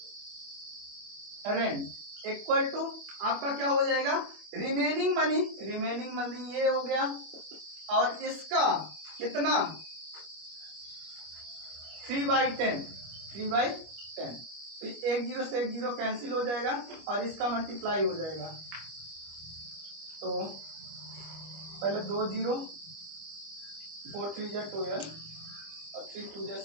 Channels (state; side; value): late; left; 25 ms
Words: rent equal to आपका क्या हो जाएगा रिमेनिंग मनी ये हो गया, और इसका कितना 3/10 तो 1 0 से 1 0 कैंसिल हो जाएगा और इसका मल्टीप्लाई हो जाएगा। तो पहले 2 0 4 3 जा 12 और 3 2 जा